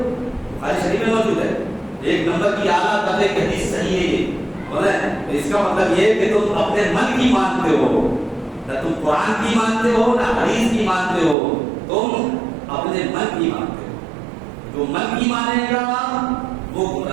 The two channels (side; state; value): left; drops out; at 11.4 s